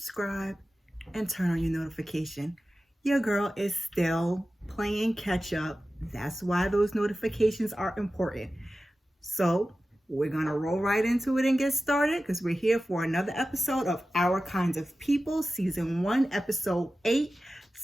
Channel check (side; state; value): both; normal; correlation 0.94